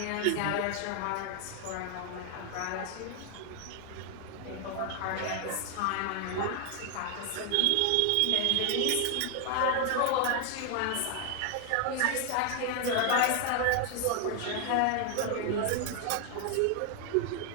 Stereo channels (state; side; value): different; both; correlation 0.00